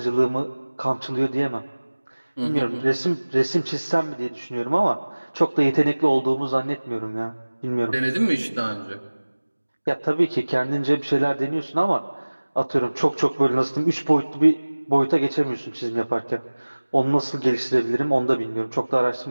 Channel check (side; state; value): both; inverted; correlation -1.00